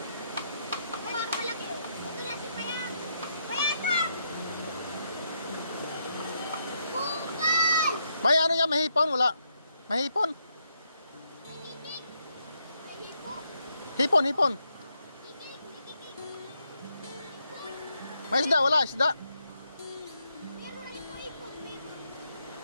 May ano yan, mahipon? Wala. Mahipon? Hipon. May isda, wala isda.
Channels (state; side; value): inverted; both; correlation -0.78